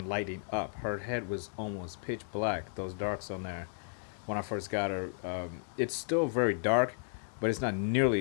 lighting up. Her head was almost pitch black, those darks on there when I first got her. It's still very dark, but it's not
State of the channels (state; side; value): silent; right; 55 dB below the other